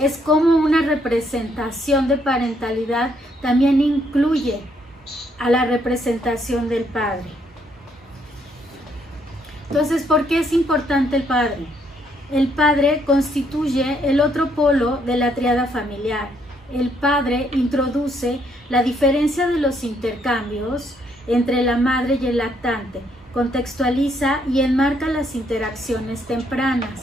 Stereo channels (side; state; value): both; normal; correlation 0.71